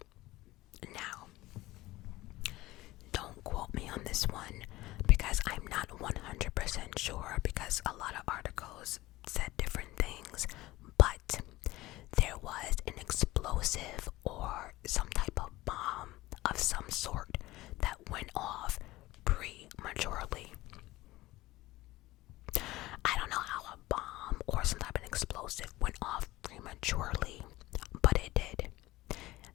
Now, don't quote me on this one because I'm not 100% sure, because a lot of articles said different things, but there was an explosive or some type of bomb of some sort that went off prematurely. I don't know how a bomb or some type of explosive went off prematurely, but it did,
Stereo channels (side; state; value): right; quieter; 18.1 dB